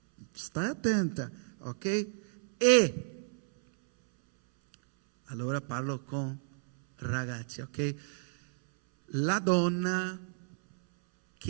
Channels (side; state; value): left; silent; 57 dB below the other